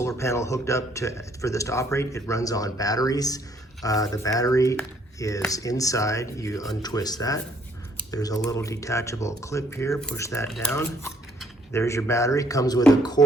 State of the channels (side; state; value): both; normal; correlation 0.65